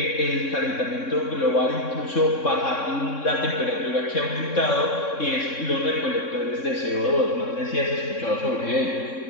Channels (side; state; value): right; late; 3.6 ms